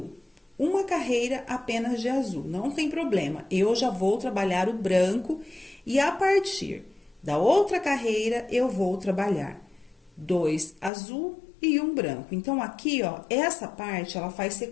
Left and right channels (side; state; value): right; drops out; at 10.9 s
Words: Uma carreira apenas de azul, não tem problema. Eu já vou trabalhar o branco e a partir da outra carreira eu vou trabalhar 2 azul e 1 branco. Então, aqui, ó, essa parte, ela faz